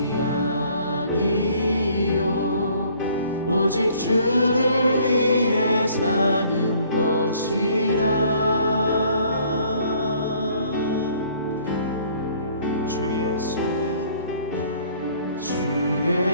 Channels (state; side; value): inverted; both; correlation -0.59